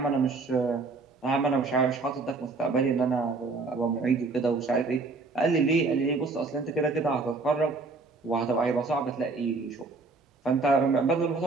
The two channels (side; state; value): left; quieter; 3.9 dB